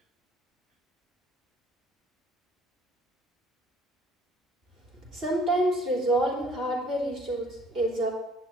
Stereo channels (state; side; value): normal; both; correlation 0.57